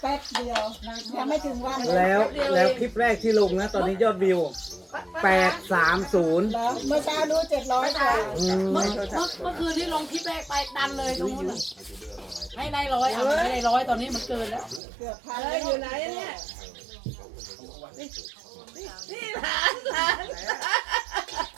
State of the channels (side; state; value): left; drops out; at 14.8 s